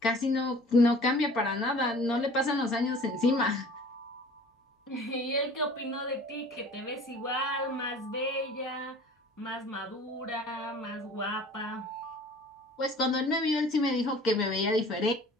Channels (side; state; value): both; normal; correlation 0.47